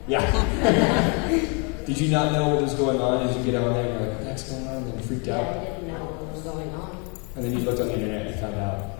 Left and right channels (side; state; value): right; quieter; 34.8 dB